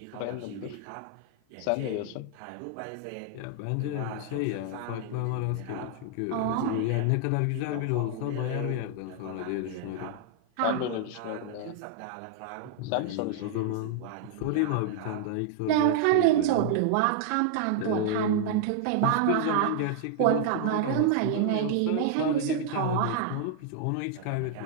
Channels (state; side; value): different; both; correlation -0.01